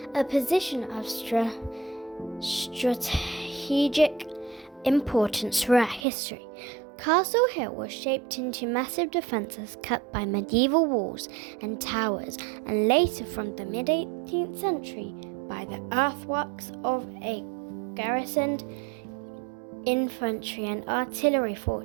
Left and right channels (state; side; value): drops out; left; at 6.1 s